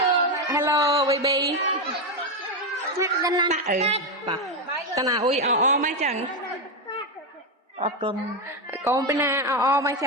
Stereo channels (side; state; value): both; normal; correlation 0.09